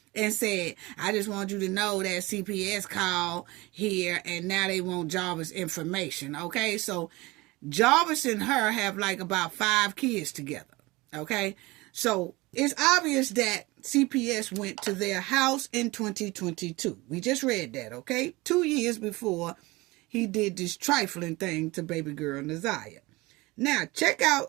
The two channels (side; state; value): left; quieter; 22.1 dB